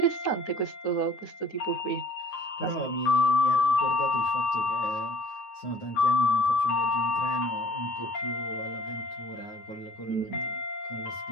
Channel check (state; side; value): late; right; 9.5 ms